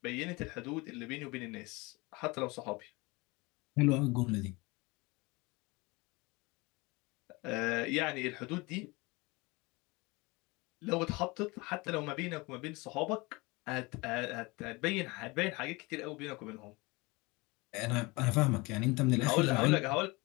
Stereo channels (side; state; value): right; quieter; 24.7 dB